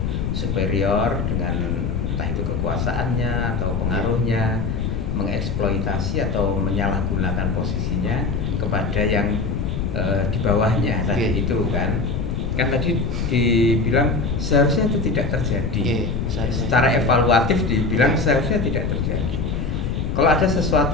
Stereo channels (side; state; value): left; noise; rumble, 1 dB below the sound